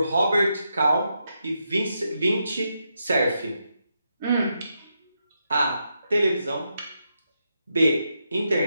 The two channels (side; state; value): both; inverted; correlation -0.83